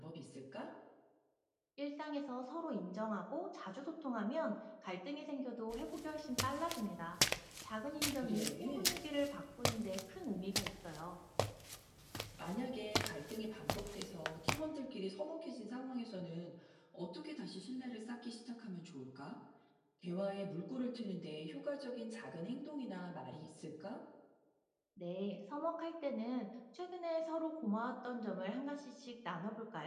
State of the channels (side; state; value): both; identical; correlation 1.00